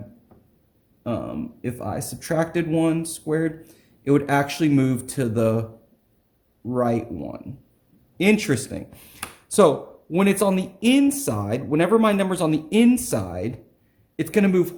if I subtracted 1 squared, it would actually move to the right one. Interesting. So when it's on the inside, whenever my number's on the inside, it's going to move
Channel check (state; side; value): identical; both; correlation 1.00